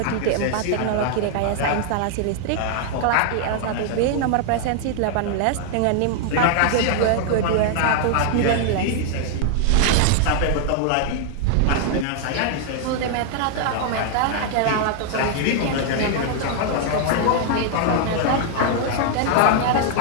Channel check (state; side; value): different; both; correlation 0.00